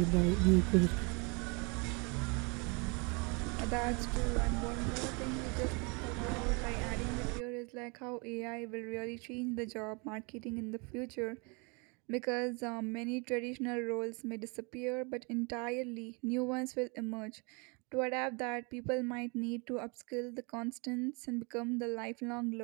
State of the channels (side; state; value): left; quieter; 31.2 dB